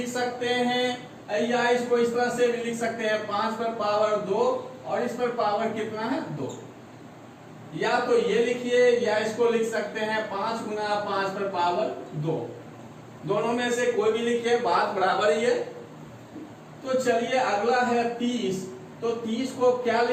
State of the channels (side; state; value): both; identical; correlation 1.00